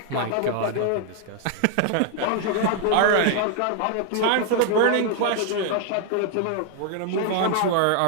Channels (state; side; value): different; both; correlation 0.00